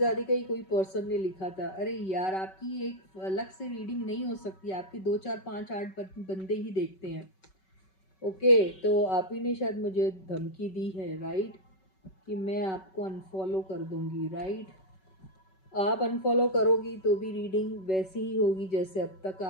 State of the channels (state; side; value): late; right; 5.3 ms